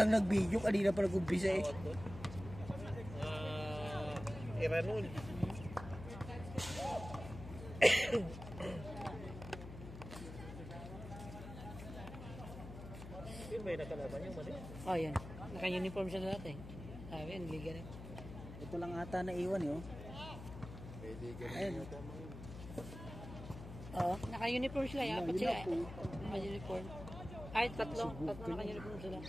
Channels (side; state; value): left; noise; hum, 11 dB below the sound